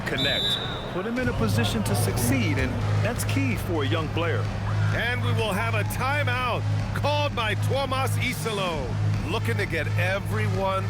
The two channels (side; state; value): both; identical; correlation 1.00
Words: Connect. Put him in a position to succeed, and that's key for a young player. And we will have a timeout called by Tuomas Isalo, looking to get everyone